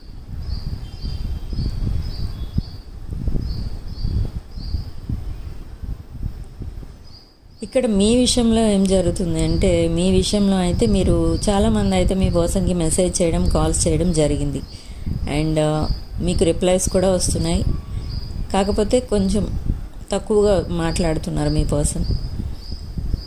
ఇక్కడ మీ విషయంలో ఏం జరుగుతుంది అంటే, మీ విషయంలో అయితే మీరు చాలామంది అయితే మీ పర్సన్కి మెసేజ్ చేయడం, కాల్స్ చేయడం జరిగింది. అండ్ మీకు రిప్లైస్ కూడా వస్తున్నాయి. కాకపోతే కొంచెం తక్కువగా మాట్లాడుతున్నారు మీ పర్సన్.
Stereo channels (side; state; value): both; identical; correlation 1.00